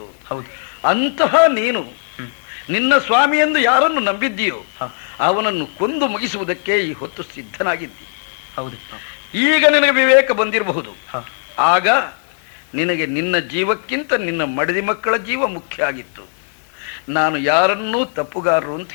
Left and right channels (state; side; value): silent; right; 60 dB below the other